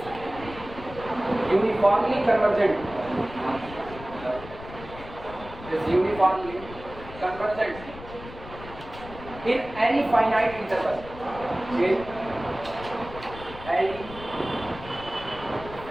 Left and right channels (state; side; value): noise; left; rumble, 14 dB below the sound